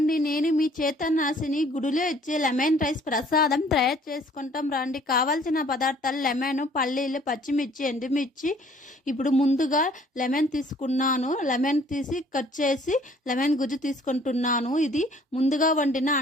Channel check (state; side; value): normal; both; correlation 0.58